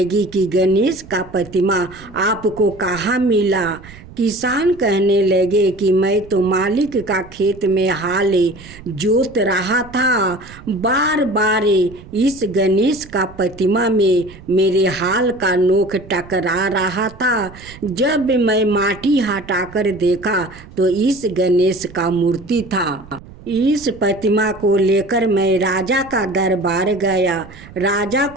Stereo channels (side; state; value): right; noise; rumble, 19 dB below the sound